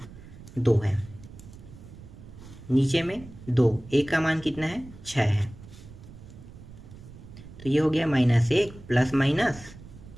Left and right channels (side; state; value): right; noise; rumble, 17 dB below the sound